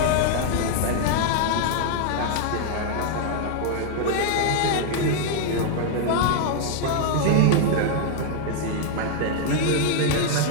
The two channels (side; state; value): both; different; correlation 0.00